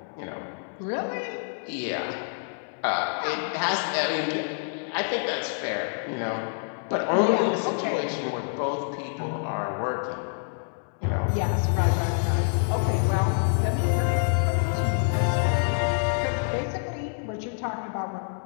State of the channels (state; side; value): silent; right; digital silence